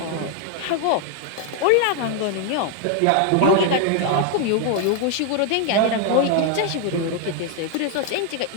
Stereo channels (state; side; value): different; both; correlation 0.00